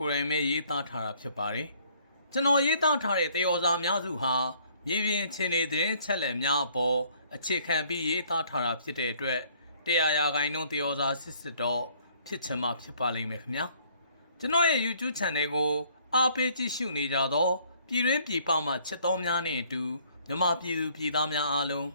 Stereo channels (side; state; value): both; inverted; correlation -0.61